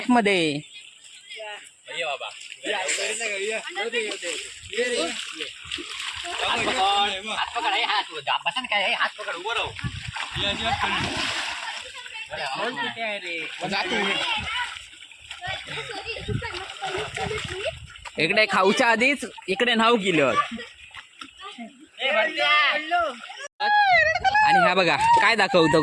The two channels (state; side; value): identical; both; correlation 1.00